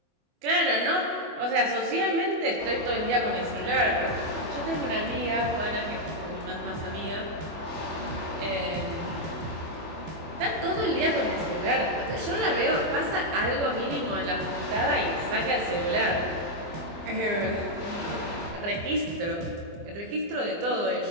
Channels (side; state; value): left; late; 24 ms